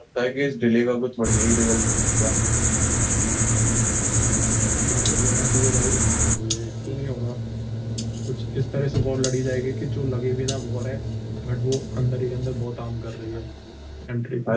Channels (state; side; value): identical; both; correlation 1.00